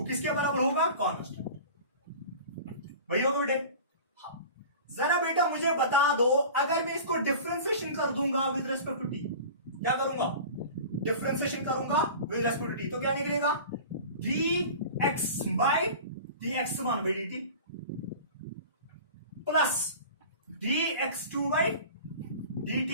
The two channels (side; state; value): both; inverted; correlation -0.38